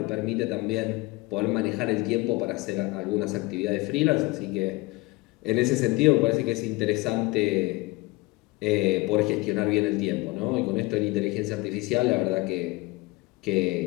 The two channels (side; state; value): right; quieter; 22.7 dB